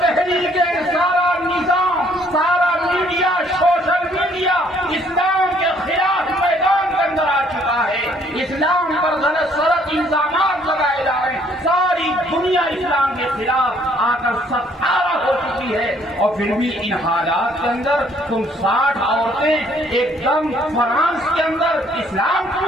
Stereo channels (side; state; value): both; normal; correlation 0.63